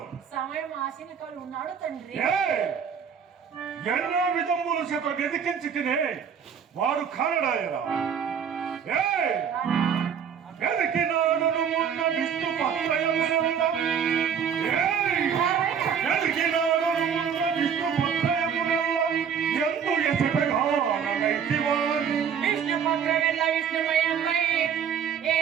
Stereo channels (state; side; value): quieter; left; 7.5 dB